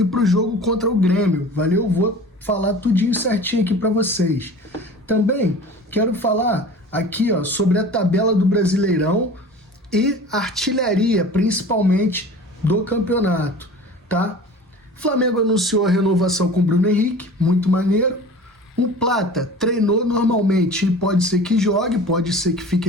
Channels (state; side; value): normal; both; correlation 0.40